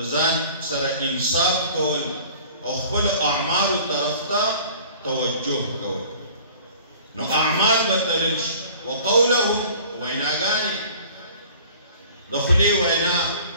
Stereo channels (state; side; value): inverted; both; correlation -0.48